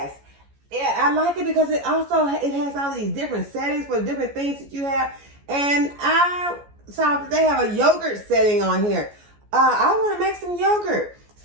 Yeah, I like it because it has all these different settings for different things that you have. And I saw that they have a yogurt setting on here. I want to make some yogurt.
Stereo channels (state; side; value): late; left; 14 ms